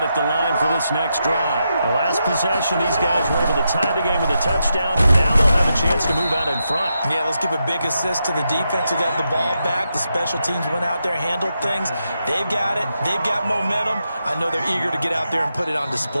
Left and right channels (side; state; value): both; inverted; correlation -0.85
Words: at the line for this next drive. The last possession, these guys were able to tie the game with a touchdown. Now they'll have a chance to move out in front. Yeah, let's give a big assist to the defense who got the ball back. The special teams went out there, handled things. They've got it. They've got momentum. I know they're eager to get out there and put it on